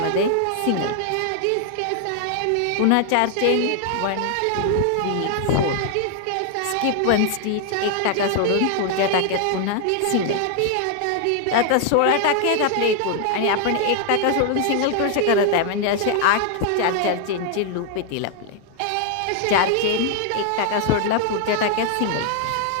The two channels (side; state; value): both; different; correlation 0.00